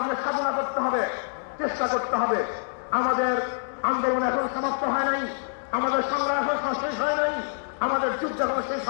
সাধনা করতে হবে, চেষ্টা করতে হবে। আমাদের আন্দোলন এখন সমাপ্ত হয় নাই, আমাদের সংগ্রাম এখন শেষ হয় নাই, আমাদের যুদ্ধ এখন শেষ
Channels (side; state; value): right; silent; digital silence